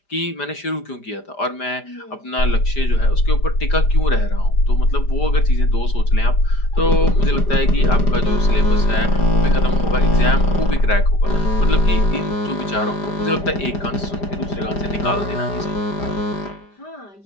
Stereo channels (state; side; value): late; right; 5.0 ms